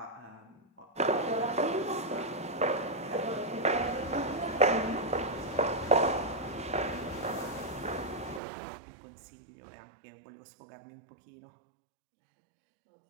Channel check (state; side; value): drops out; left; at 8.4 s